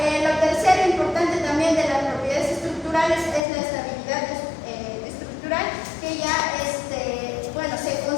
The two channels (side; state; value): right; drops out; at 3.4 s